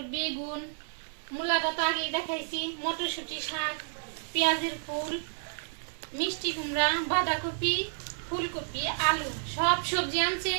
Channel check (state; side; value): silent; left; 57 dB below the other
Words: বেগুন, মূলাটা তো আগেই দেখাইছি, মটরশুঁটি, শাক, পেঁয়াজের ফুল, মিষ্টি কুমড়া, বাঁধাকপি, ফুলকপি, আলু, সব সবজি আনছে।